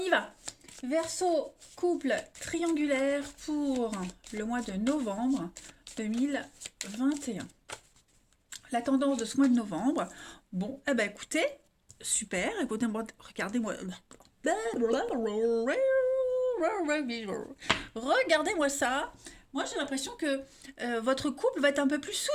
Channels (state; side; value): identical; both; correlation 1.00